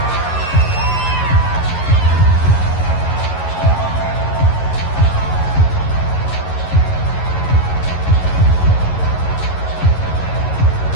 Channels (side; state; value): right; late; 11 ms